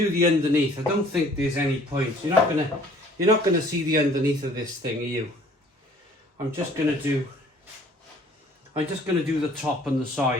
the underneath. I don't think there's any point. You're not going to see the underneath of this thing, are you? I'm just going to do the top and the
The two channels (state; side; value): normal; both; correlation 0.55